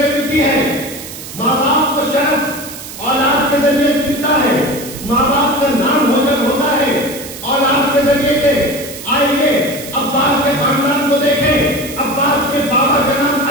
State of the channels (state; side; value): noise; right; hiss, 12 dB below the sound